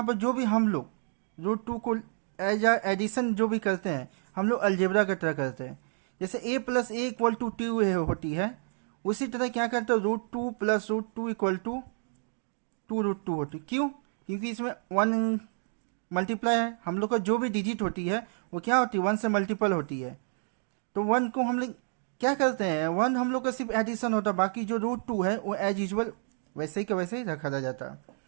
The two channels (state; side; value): silent; left; 58 dB below the other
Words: पर जो भी हम लोग रूट टू को एज एडिशन जो भी करते हैं हम लोग अलजेब्रा की तरह करते हैं। जैसे a plus a equal to two होती है, उसी तरह क्या करते हैं root two plus root two equal to two root two होती है। क्यों? क्योंकि इसमें वन मल्टीप्लाई है, हम लोग का जो भी डिजिट होती है वो क्या होती है, वन से मल्टीपल होती है। तो वन को हम लोग क्या करते हैं, वन हम लोग का सिर्फ एडिशन होता है, बाकी जो रूट टू है वो एज यूजल वैसे ही का वैसे ही रखा जाता है।